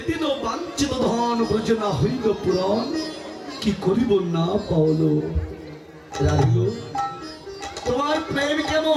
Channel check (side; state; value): both; identical; correlation 1.00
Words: বাঞ্ছিত ধন ব্রজ না হইল পুরন, কি করিব না পাওল। রাধিল, তোমার প্রেম